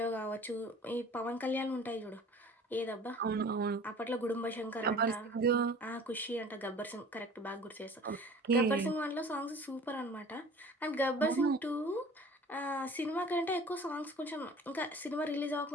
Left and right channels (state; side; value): normal; both; correlation 0.46